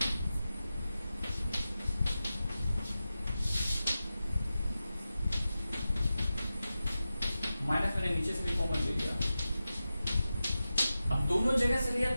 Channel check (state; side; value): inverted; both; correlation -0.93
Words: माइनस मैंने नीचे से भी कॉमन ले लिया। अब दोनों जगह से लिया